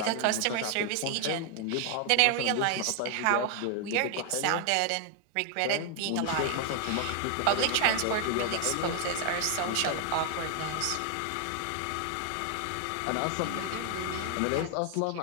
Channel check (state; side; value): different; both; correlation 0.00